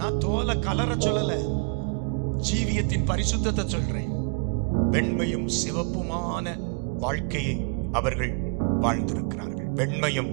நான் தோலை கலர சொல்லல, ஜீவியத்தின் பரிசுத்தத்தை சொல்றேன். வெண்மையும் சிவப்புமான வாழ்க்கையை அவர்கள் வாழ்ந்திருக்கிறார்கள். வெண்மையும்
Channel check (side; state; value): left; quieter; 37.7 dB